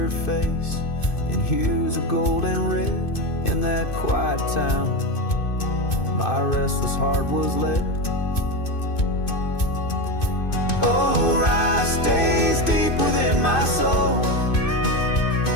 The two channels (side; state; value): right; late; 2.5 ms